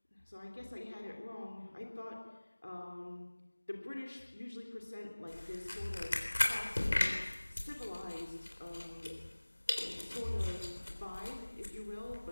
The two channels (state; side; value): inverted; both; correlation -1.00